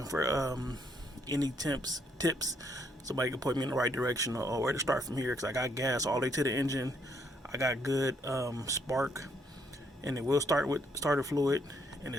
for any tips. Somebody can point me in the right direction or where to start from here, because I got gas all the way to the engine. I got good spark, and it will start with starter fluid, and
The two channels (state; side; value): normal; both; correlation 0.72